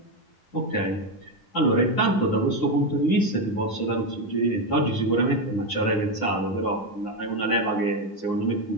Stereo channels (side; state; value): right; late; 9.6 ms